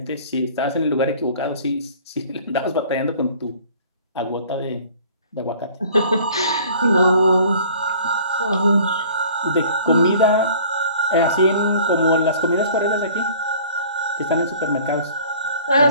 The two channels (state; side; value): inverted; both; correlation -0.49